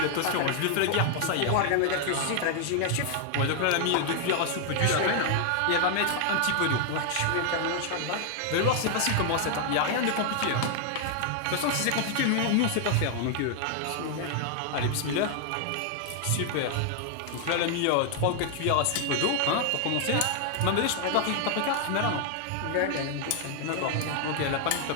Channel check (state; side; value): different; both; correlation 0.00